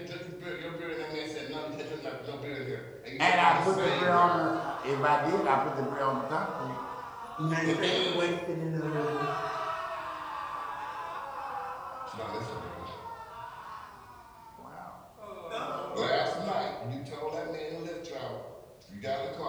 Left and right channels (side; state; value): both; identical; correlation 1.00